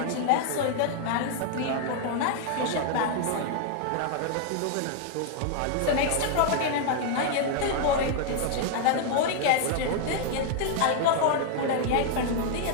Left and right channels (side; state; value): both; different; correlation 0.00